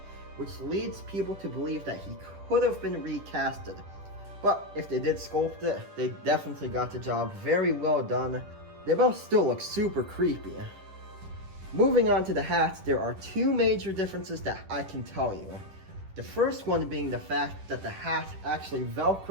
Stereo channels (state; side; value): late; left; 10 ms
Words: which leads people to believe that he could have been recasted. But if they did sculpt it, they definitely got the job very well done. They both still look super creepy. Moving on to the hats, there are two major differences that I can tell you. The first one being the fact that the hat actually